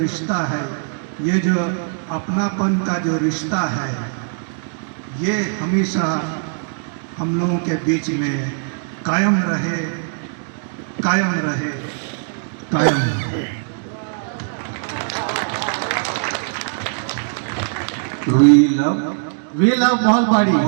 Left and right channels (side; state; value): left; silent; digital silence